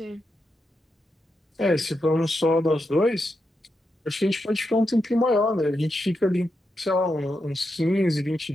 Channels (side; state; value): both; normal; correlation 0.86